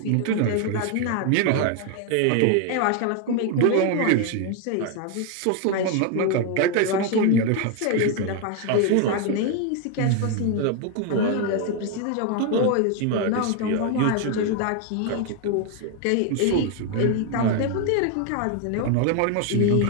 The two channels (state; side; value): different; both; correlation 0.01